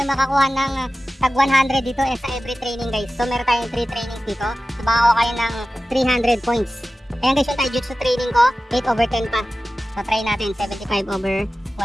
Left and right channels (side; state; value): both; normal; correlation 0.95